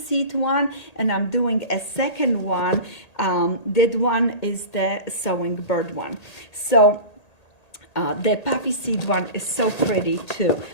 one, and I'm doing a second one. That one is the sewing bird one. So the poppy seed one is so pretty too.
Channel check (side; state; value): right; late; 1.8 ms